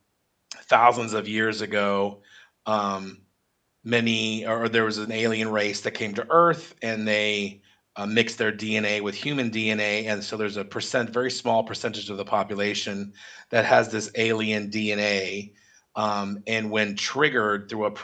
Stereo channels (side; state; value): both; identical; correlation 1.00